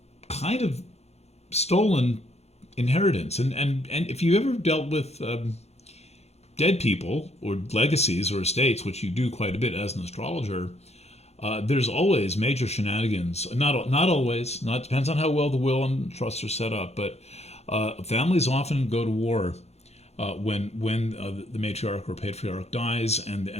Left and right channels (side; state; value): right; late; 0.31 ms